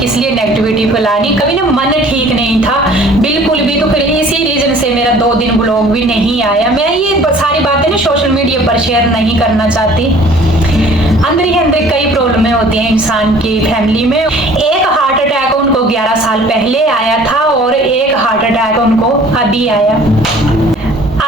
लिए नेगेटिविटी फैलानी। कभी ना मन ठीक नहीं था बिल्कुल भी, तो फिर इसी रीजन से मेरा 2 दिन ब्लॉग भी नहीं आया। मैं ये सारी बातें ना सोशल मीडिया पर शेयर नहीं करना चाहती। अंदर ही अंदर कई प्रॉब्लमें होती हैं इंसान की फैमिली में। एक हार्ट अटैक उनको 11 साल पहले आया था और एक हार्ट अटैक उनको अभी आया।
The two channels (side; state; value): both; normal; correlation 0.51